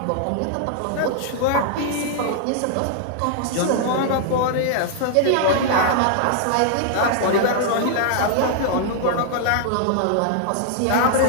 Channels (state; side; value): different; both; correlation -0.01